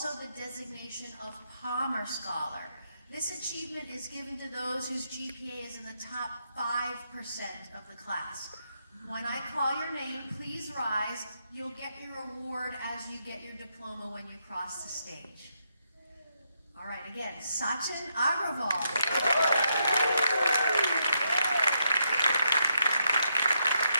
the designation of Palmer Scholar. This achievement is given to those whose GPA is in the top 5% of the class. When I call your name, please rise. You'll get your award as you get your diploma when you cross the stage. All right, again, Sachin Agrawal.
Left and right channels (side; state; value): both; inverted; correlation -0.80